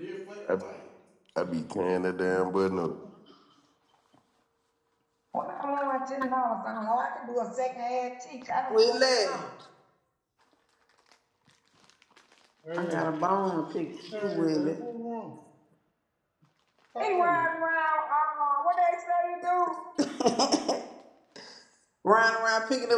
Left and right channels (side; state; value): both; identical; correlation 1.00